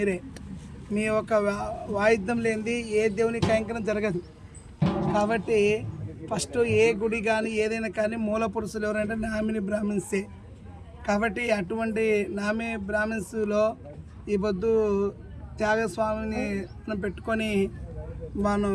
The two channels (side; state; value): both; identical; correlation 1.00